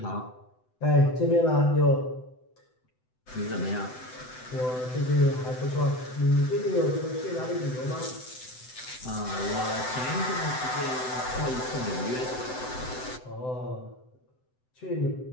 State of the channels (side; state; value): right; late; 7.9 ms